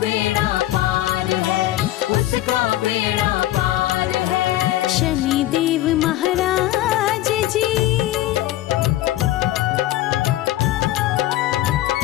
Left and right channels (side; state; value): right; quieter; 15.0 dB